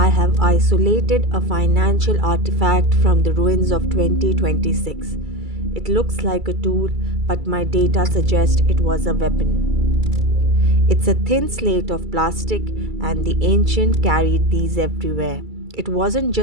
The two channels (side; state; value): left; late; 2.3 ms